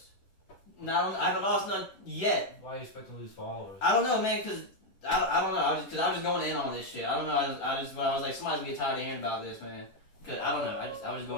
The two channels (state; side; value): late; right; 10 ms